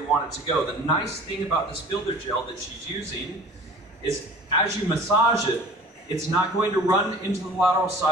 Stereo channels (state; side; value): normal; both; correlation 0.45